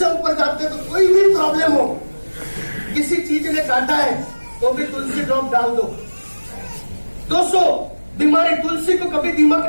ऊपर जाते तो कोई भी प्रॉब्लम हो, किसी चीज ने काटा है तो भी तुलसी ड्रॉप डाल दो। 200 बीमारी, तुलसी को कभी दीमक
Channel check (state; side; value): inverted; both; correlation -1.00